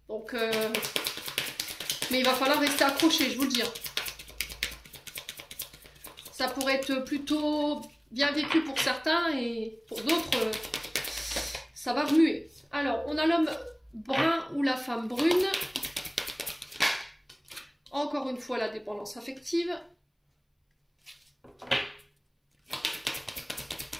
Donc... mais il va falloir rester accroché, je vous le dis. Ça pourrait être plutôt bien vécu pour certains et pour d'autres, ça va remuer. Alors, on a l'homme brun ou la femme brune. Encore une fois, la dépendance affective.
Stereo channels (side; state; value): both; identical; correlation 1.00